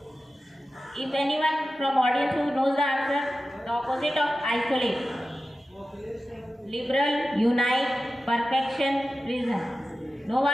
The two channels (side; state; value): both; normal; correlation 0.93